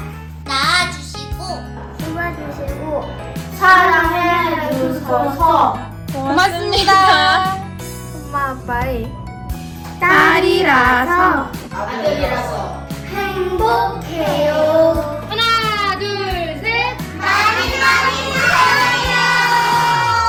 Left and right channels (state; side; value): identical; both; correlation 1.00